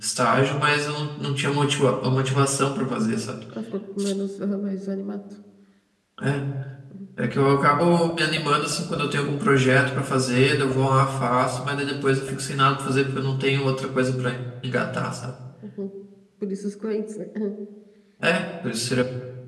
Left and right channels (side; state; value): both; identical; correlation 1.00